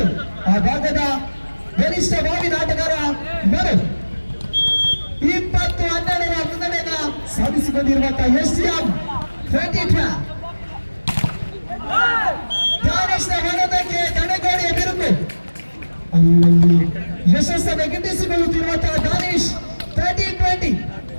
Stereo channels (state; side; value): inverted; both; correlation -1.00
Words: ಆ ಭಾಗದ ಬಲಿಷ್ಠ ಭಾವಿ ಆಟಗಾರ ಮನೋ 20-12 ಮುನ್ನಡೆಯನ್ನ ಸಾಧಿಸಿಕೊಂಡಿರುವಂತಹ ಎಸ್ಟಿಎಂ 2012 ದಾನಿಶ್ನ ಹೊಡೆತಕ್ಕೆ ತಡೆಗೋಡೆಯ ಬಿರುಕು ಅಲ್ಲಲ್ಲಿ ಯಶಸ್ಸನ್ನು ಗಿಟ್ಟಿಸಿಕೊಳ್ಳುತ್ತಿರುವಂತಹ ದಾನಿಶ್ 13-20